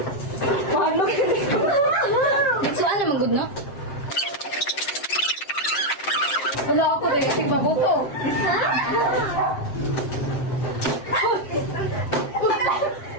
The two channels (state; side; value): late; right; 7.6 ms